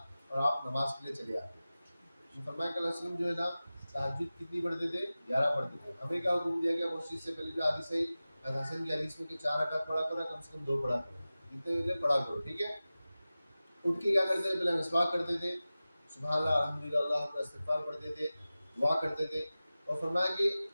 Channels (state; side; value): inverted; both; correlation -0.96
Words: اور آپ نماز کے لیے چلے آتے. فرمایا کہ اللہ علیہ وسلم جو ہے نا تہجد کتنی پڑھتے تھے؟ 11 پڑھتے تھے. ہمیں کیا حکم دیا گیا اس چیز سے پہلے جو حدیث ہے حسن کی حدیث میں کہ 4 رکعت پڑھا کرو، کم سے کم 2 پڑھا کرو، جتنے پڑھا کرو. ٹھیک ہے. اٹھ کے کیا کرتے تھے؟ پہلے مسواک کرتے تھے، سبحان اللہ الحمدللہ اللہ اکبر استغفار پڑھتے تھے، دعا کرتے تھے. اور فرمایا کہ